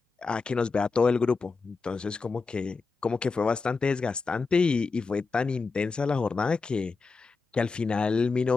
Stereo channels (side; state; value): right; quieter; 4.4 dB